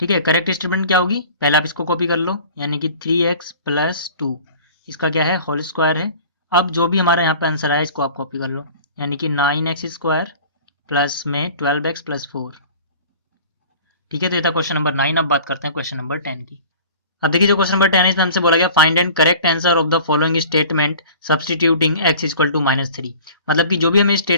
है, करेक्ट स्टेटमेंट क्या होगी, पहले आप इसको कॉपी कर लो, यानी कि 3x प्लस 2 इसका क्या है होल स्क्वायर है। अब जो भी हमारा यहाँ पे आंसर आया इसको आप कॉपी कर लो, यानी कि 9x स्क्वायर प्लस में 12x प्लस 4। ठीक है, तो ये था क्वेश्चन नंबर 9। अब बात करते हैं क्वेश्चन नंबर 10 की। अब देखिए जो क्वेश्चन नंबर 10 है इसमें हमसे बोला गया find and correct answer of the following statement substituting x equal to -3। मतलब कि जो भी हमें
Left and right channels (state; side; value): inverted; both; correlation -0.44